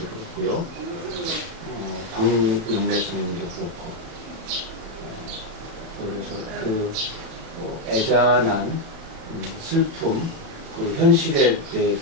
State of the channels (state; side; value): late; left; 37 ms